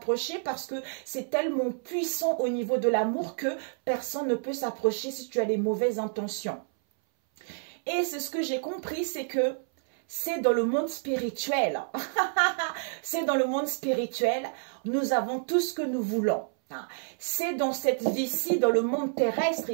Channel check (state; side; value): silent; left; 59 dB below the other